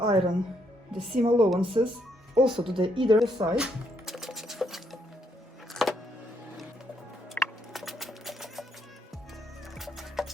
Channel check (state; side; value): normal; both; correlation 0.74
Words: the seam allowances also to the either side.